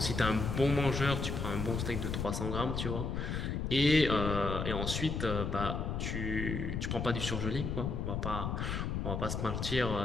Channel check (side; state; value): left; noise; rumble, 2 dB below the sound